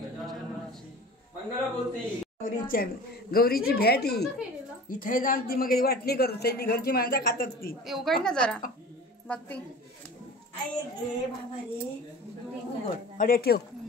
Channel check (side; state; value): both; normal; correlation 0.39